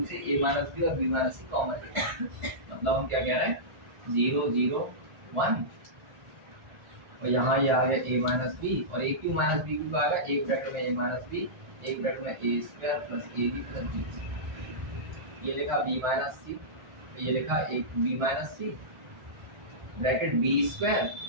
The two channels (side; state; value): left; late; 1.4 ms